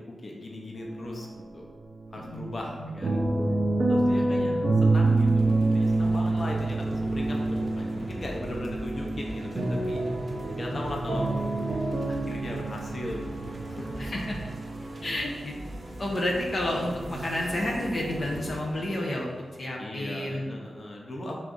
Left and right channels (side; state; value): both; normal; correlation 0.93